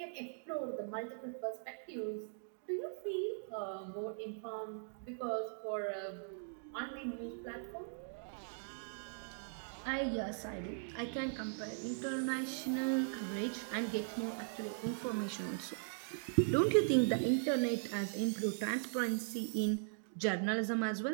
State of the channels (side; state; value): left; silent; digital silence